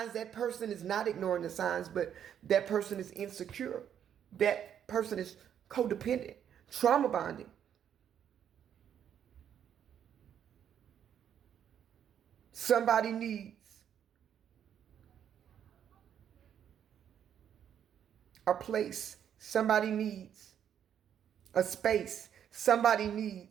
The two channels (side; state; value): left; quieter; 9.2 dB